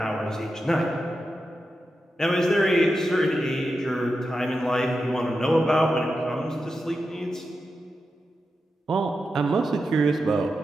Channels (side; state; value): both; normal; correlation 0.89